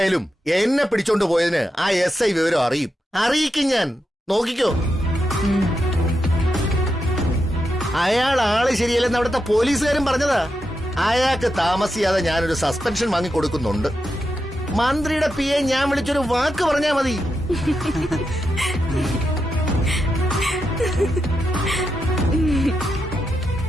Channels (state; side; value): normal; both; correlation 0.86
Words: എന്നെ പിടിച്ചോണ്ട് പോയതിന് ആ SI വിവരം അറിയിക്കും ഞാൻ. നോക്കിക്കോ. അയാൾ ആള് ശരിയല്ലെന്ന് അവിടുത്തെ പോലീസുകാരും പറഞ്ഞതാ. അയാൾക്ക് താമസിയാതെ ഞാനൊരു സസ്പെൻഷൻ വാങ്ങി കൊടുക്കുന്നുണ്ട്. മന്ത്രിയുടെ PA ഞാൻ വിളിച്ചൊരു വാക്ക് പറഞ്ഞാ മതി.